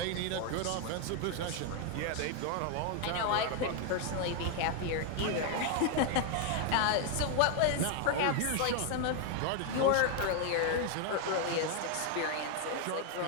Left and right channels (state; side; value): different; both; correlation 0.00